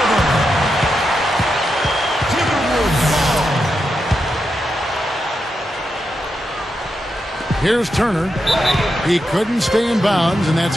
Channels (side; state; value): both; normal; correlation 0.86